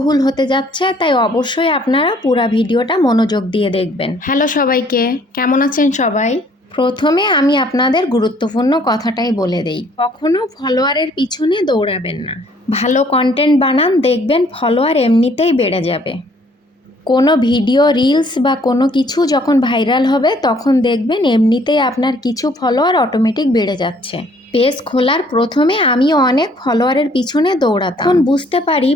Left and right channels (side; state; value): both; normal; correlation 0.61